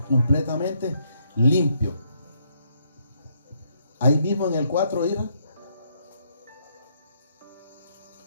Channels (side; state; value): both; inverted; correlation -0.73